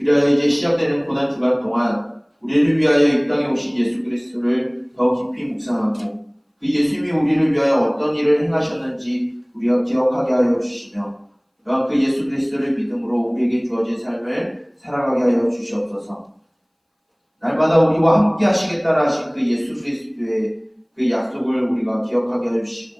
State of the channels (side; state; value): both; identical; correlation 1.00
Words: 이제 시작되는 고난 주간 동안 우리를 위하여 이 땅에 오신 예수 그리스도를 더 깊이 묵상하고 그 예수님이 우리를 위하여 어떤 일을 행하셨는지 우리가 기억하게 하여 주시며 또한 그 예수 그리스도를 믿음으로 우리에게 주어진 삶을 살아가게 하여 주시옵소서. 날마다 우리와 함께 하시겠다라 하신 그 예수 그리스도의 그 약속을 우리가 기억하게 하여